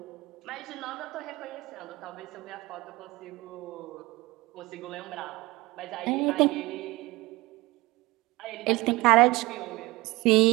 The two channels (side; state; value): left; quieter; 21.2 dB